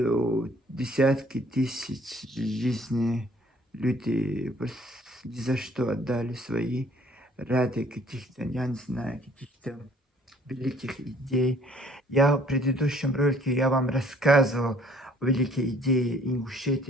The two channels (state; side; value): normal; both; correlation 0.58